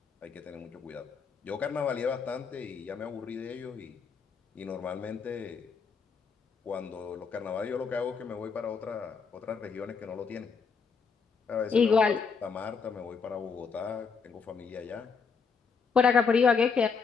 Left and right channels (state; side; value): quieter; right; 5.5 dB